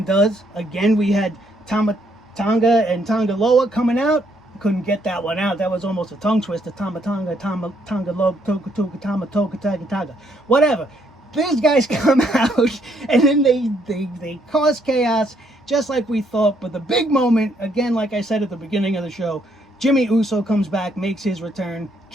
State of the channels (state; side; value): normal; both; correlation 0.71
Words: does. Again, we had Tonga and Tonga Loa coming out. Couldn't get that one out. That was almost a tongue twister. Tonga Loa, Toga. Whatever. These guys come out and then they cause chaos just like we thought. But the big moment, again, like I said at the beginning of the show, Jimmy Uso comes back, makes his return,